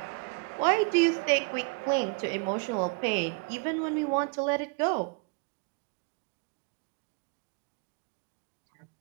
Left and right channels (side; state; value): left; quieter; 34.3 dB